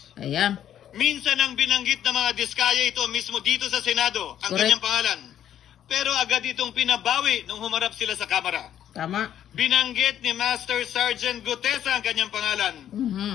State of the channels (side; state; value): right; quieter; 10.5 dB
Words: Ayan. Minsan ang binanggit ng mga diskaya ito mismo dito sa Senado, ang Correct. kanyang pangalan. Pero agad itong pinabawi nung humarap sila sa Kamara. Tama. Binanggit ni Master Sergeant Gutesa ang kanyang pangalan.